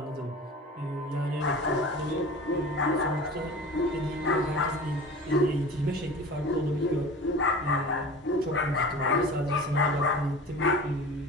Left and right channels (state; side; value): normal; both; correlation 0.37